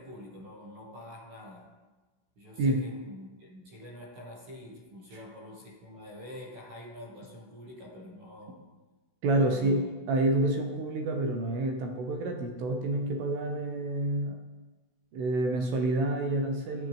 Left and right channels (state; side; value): late; left; 16 ms